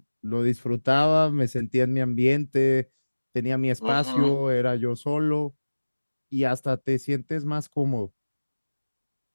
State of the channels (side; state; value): both; inverted; correlation -1.00